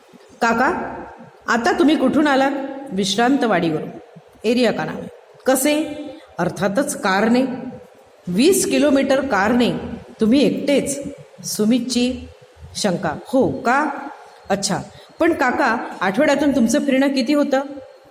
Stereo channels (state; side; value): identical; both; correlation 1.00